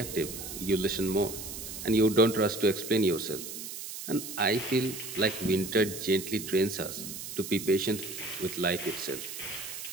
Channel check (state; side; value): noise; right; hiss, 9 dB below the sound